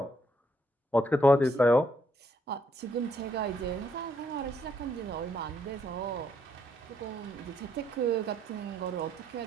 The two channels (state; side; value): normal; both; correlation 0.73